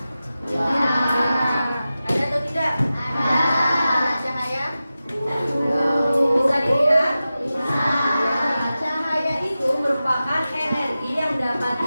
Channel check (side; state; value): both; inverted; correlation -0.94